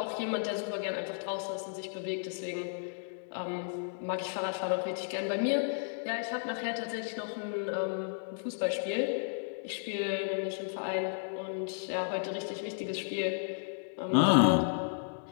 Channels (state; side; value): silent; right; digital silence